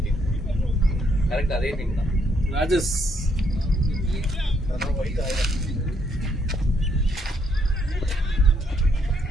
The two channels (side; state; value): both; normal; correlation 0.72